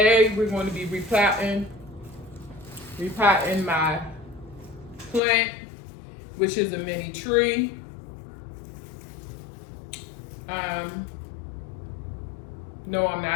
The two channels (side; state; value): right; drops out; at 5.2 s